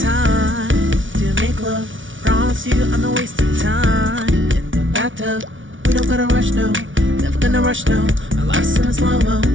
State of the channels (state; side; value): late; left; 0.56 ms